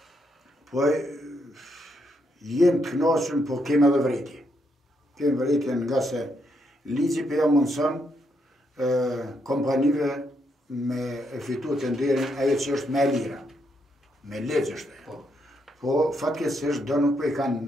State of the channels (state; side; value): normal; both; correlation 0.78